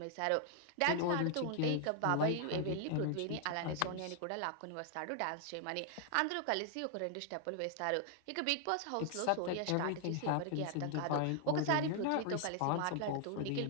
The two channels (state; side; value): different; both; correlation 0.00